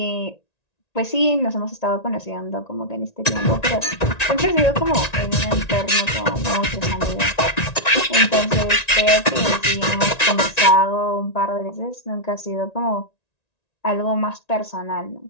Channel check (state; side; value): late; right; 1.9 ms